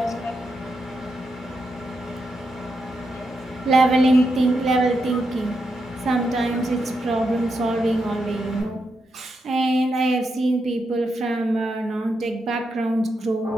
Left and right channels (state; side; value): normal; both; correlation 0.84